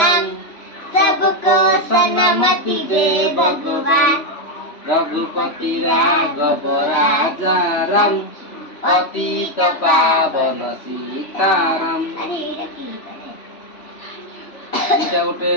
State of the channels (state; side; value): late; right; 3.1 ms